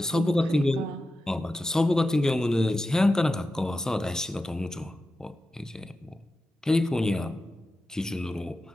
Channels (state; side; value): normal; both; correlation 0.92